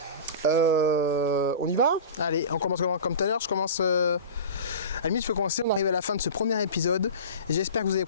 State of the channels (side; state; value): both; inverted; correlation -0.33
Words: On y va? Allez, on commence comme tout à l'heure. Je commence. À la limite, je peux commencer. On arrive à la fin de ce premier épisode. Et j'espère que vous avez